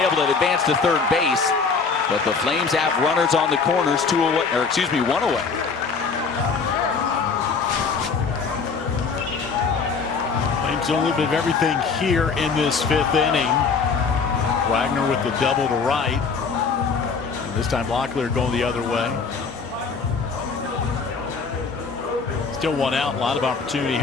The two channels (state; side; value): quieter; right; 5.1 dB